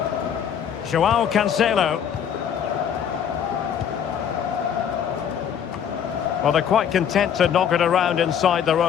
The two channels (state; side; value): quieter; right; 8.5 dB